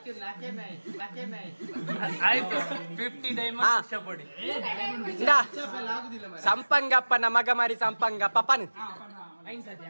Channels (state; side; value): inverted; both; correlation -1.00